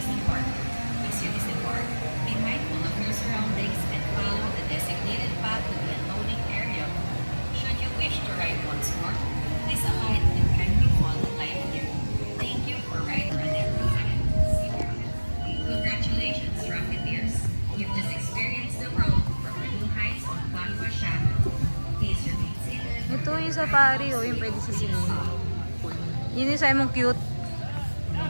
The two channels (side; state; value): both; inverted; correlation -1.00